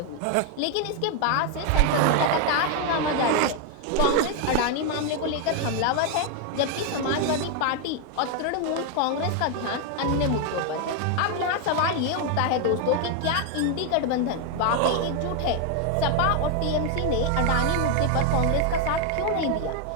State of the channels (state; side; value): different; both; correlation 0.01